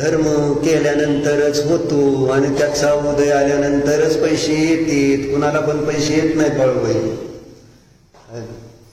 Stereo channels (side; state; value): both; identical; correlation 1.00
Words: केल्यानंतरच होतो आणि त्याचा उदय आल्यानंतरच पैसे येतात. कुणाला पण पैसे येत नाहीत बाळूबाई.